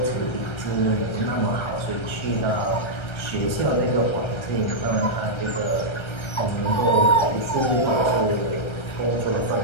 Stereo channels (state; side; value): late; right; 1.3 ms